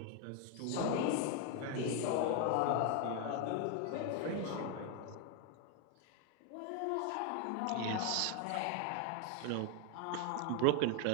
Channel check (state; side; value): different; both; correlation 0.00